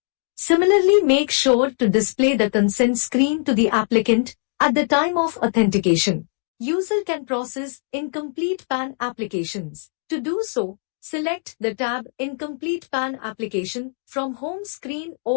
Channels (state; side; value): silent; right; digital silence